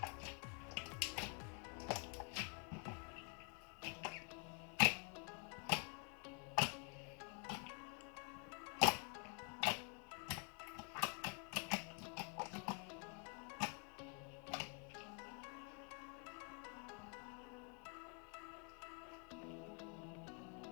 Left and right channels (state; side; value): quieter; right; 38.5 dB